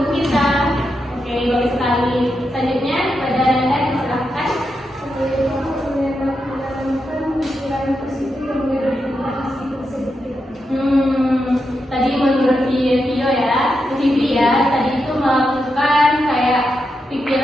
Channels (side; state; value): both; normal; correlation 0.86